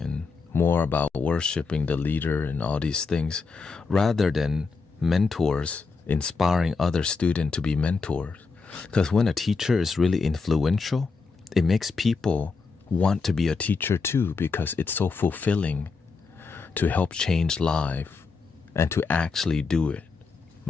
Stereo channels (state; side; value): quieter; right; 4.5 dB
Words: more about worshiping the leader and all these things, rather than mentors inspiring other students to be mentors. Because when a teacher is really influential, it makes people want to be a teacher too, because it's so fulfilling to help change life and to actually do it,